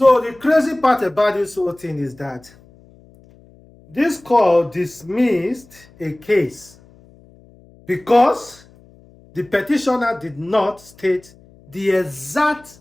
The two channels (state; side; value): noise; left; hum, 27 dB below the sound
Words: the crazy part about this whole thing is that this court dismissed a case because the petitioner did not state the exact,